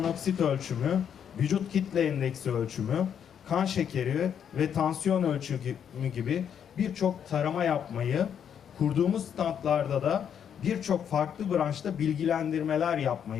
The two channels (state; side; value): quieter; right; 8.4 dB